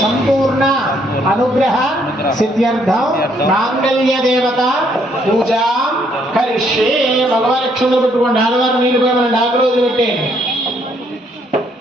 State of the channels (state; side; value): normal; both; correlation 0.69